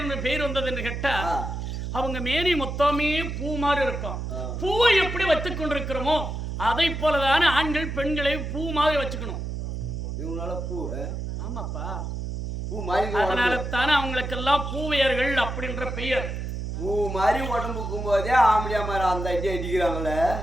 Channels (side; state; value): right; noise; hum, 5 dB below the sound